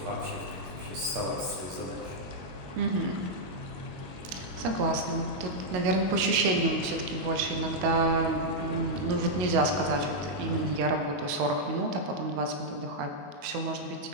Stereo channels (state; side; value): late; left; 21 ms